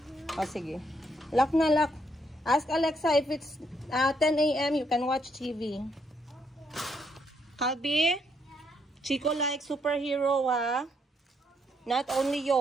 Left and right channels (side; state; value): both; normal; correlation 0.74